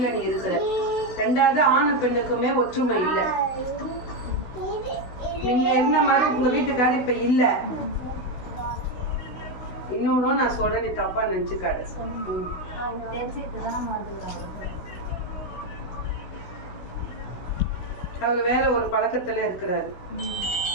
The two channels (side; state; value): right; late; 16 ms